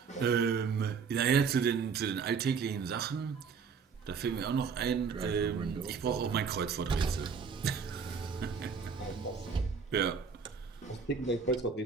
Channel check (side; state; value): left; quieter; 5.8 dB